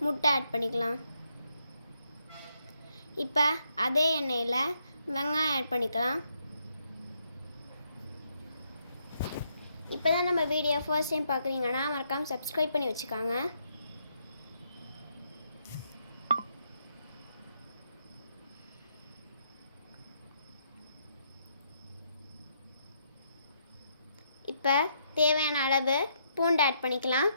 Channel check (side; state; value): both; inverted; correlation -0.75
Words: முட்டை ஆட் பண்ணிக்கலாம். இப்போ அதே எண்ணெயில வெங்காயம் ஆட் பண்ணிக்கலாம். இப்போதான் நம்ம வீடியோ ஃபர்ஸ்ட் டைம் பார்க்குறீங்கன்னா மறக்காம சப்ஸ்கிரைப் பண்ணி வச்சுக்கோங்க. இப்போ தேவையான அளவு பூண்டு ஆட் பண்ணிக்கலாம்.